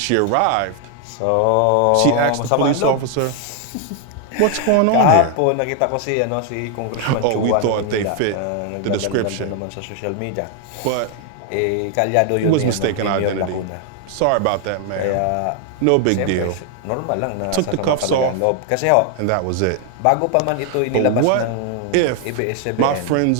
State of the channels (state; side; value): different; both; correlation 0.00